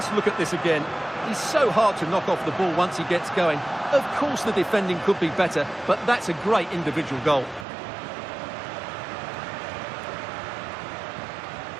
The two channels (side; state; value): left; drops out; at 7.7 s